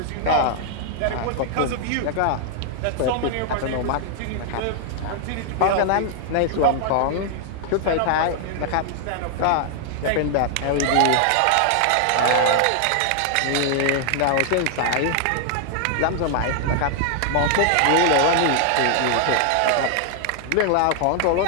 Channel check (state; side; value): different; both; correlation 0.00